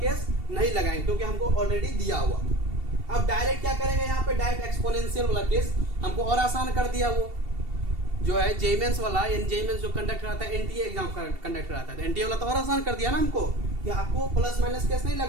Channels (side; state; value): left; late; 2.7 ms